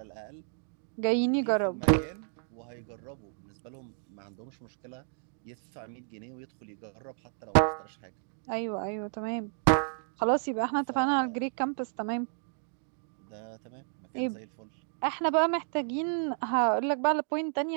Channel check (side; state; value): left; silent; digital silence